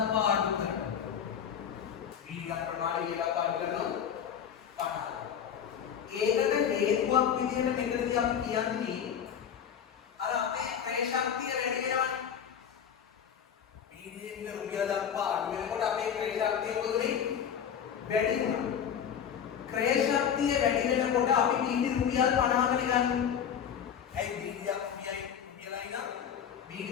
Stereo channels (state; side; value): quieter; right; 8.2 dB